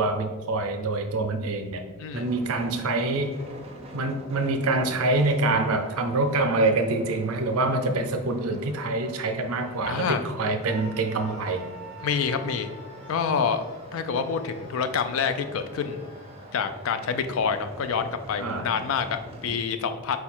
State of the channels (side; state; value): both; normal; correlation 0.06